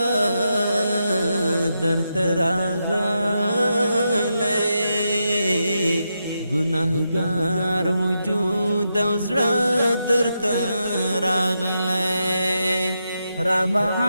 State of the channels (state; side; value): inverted; both; correlation -0.85